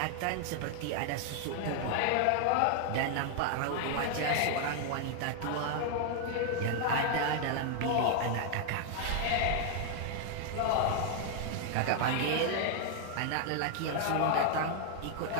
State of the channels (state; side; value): different; both; correlation 0.00